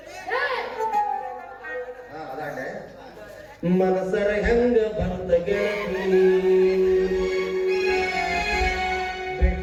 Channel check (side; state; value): both; identical; correlation 1.00